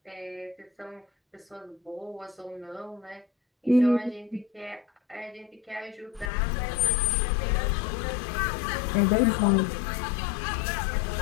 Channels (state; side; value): drops out; right; at 6.3 s